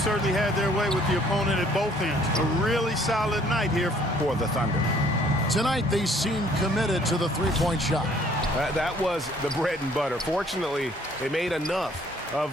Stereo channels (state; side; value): normal; both; correlation 0.60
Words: had their way with the opponent at both ends. A really solid night here for the Thunder. Tonight, they seem committed to the three-point shot. That was the bread and butter. Fortunately, they made enough